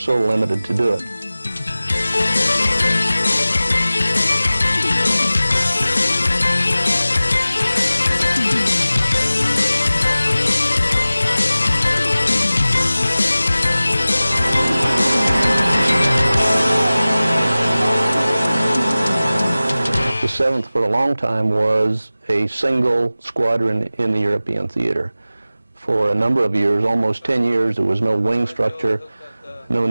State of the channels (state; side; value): inverted; both; correlation -0.97